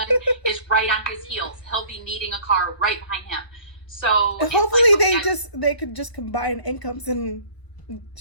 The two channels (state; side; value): late; right; 1.0 ms